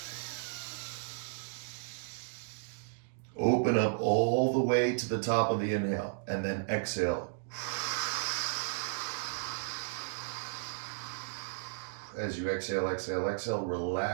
Open up all the way to the top of the inhale. And then exhale. As you exhale, exhale, exhale,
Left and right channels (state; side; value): silent; left; digital silence